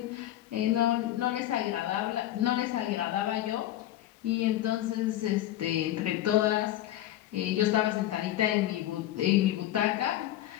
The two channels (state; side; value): quieter; right; 13.6 dB